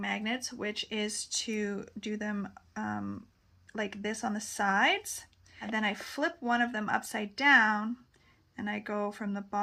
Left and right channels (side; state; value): both; identical; correlation 1.00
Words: which is to do them like this on the sides, and then I flip one of them upside down and I go from the